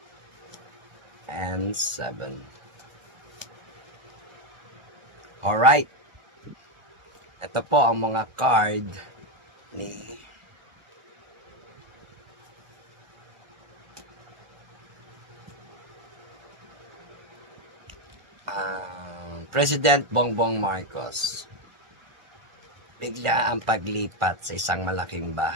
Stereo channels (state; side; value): late; left; 1.5 ms